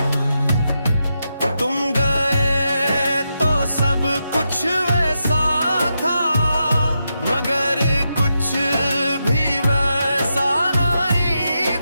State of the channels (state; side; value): inverted; both; correlation -0.85